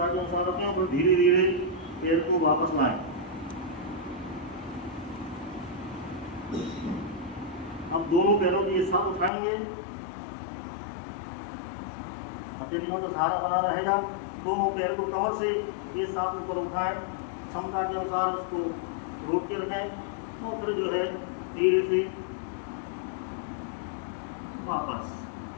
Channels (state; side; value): drops out; right; at 9.3 s